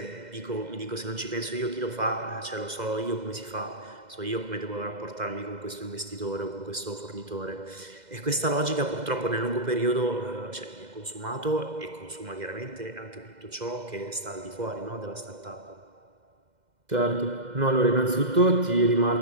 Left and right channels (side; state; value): left; late; 2.0 ms